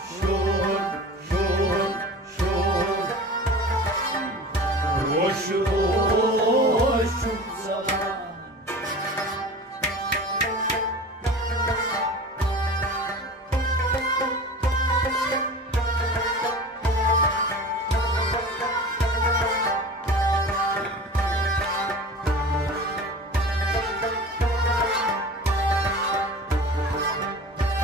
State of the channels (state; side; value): normal; both; correlation 0.37